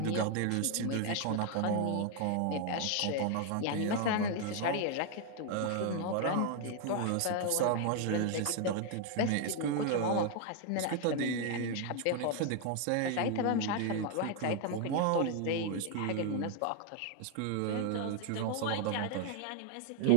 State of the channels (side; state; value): both; different; correlation 0.00